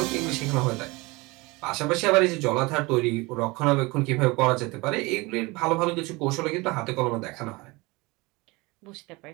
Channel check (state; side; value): quieter; left; 24.1 dB